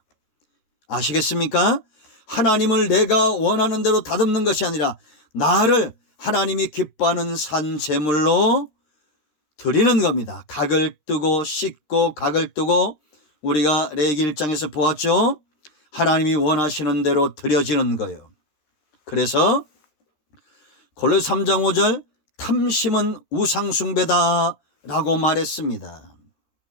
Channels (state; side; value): late; right; 13 ms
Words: 아시겠습니까? 하나님을 내가 원하는 대로 다듬는 것이 아니라 나를 하나님이 기뻐하는 산 제물로 드리는 겁니다. 각을 뜨고 씻고 각을 뜨고 우리가 레위기 1장에서 보았죠. 하나님이 원하시는 대로 드려지는 거예요. 그래서 골로새 3장 5절 탐심은 우상숭배다라고 말했습니다.